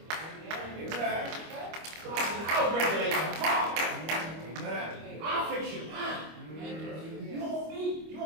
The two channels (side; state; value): left; late; 25 ms